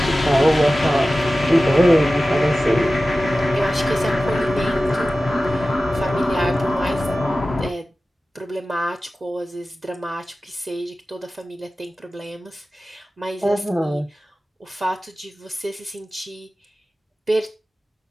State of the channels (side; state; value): both; normal; correlation 0.96